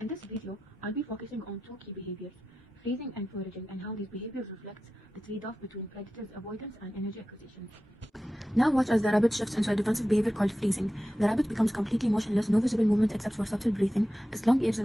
In this video, I'll be focusing on two key behaviors: freezing and foraging, and how these behaviors reflect the trade-off between predators' avoidance and energy acquisition. Now watch as the rabbit shifts into a defensive behavior called freezing. The rabbit becomes completely motionless, no visible movement except for subtle breathing. Its long ears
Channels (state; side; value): normal; both; correlation 0.93